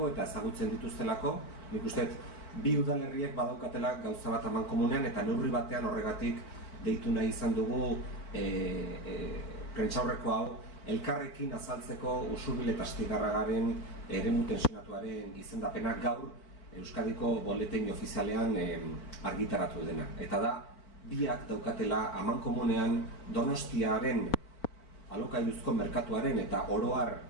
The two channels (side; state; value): right; late; 4.4 ms